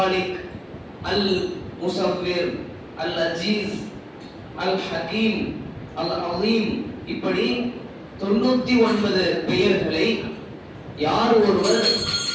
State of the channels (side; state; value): both; identical; correlation 1.00